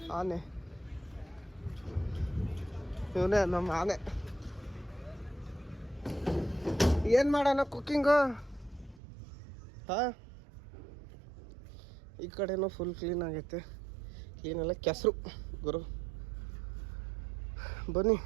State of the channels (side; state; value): left; drops out; at 9.0 s